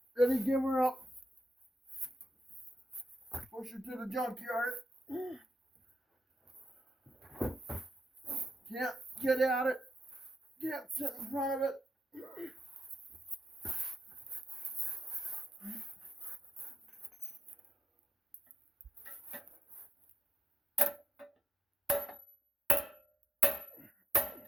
Ready, give her up. Push her to the junkyard. Can't get at it. Can't sit in front of it.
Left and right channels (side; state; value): both; normal; correlation 0.84